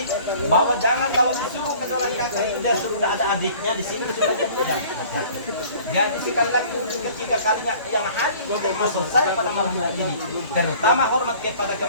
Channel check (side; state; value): both; inverted; correlation -0.50